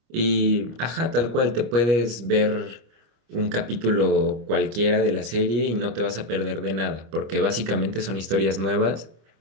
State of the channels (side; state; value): left; late; 25 ms